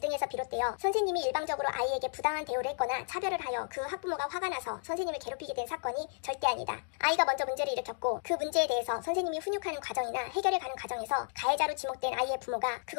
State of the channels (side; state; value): right; silent; digital silence